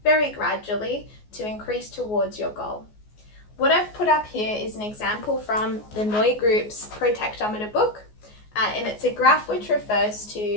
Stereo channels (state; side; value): late; right; 14 ms